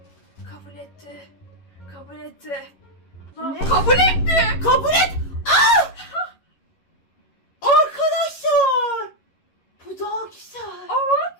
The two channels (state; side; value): late; right; 11 ms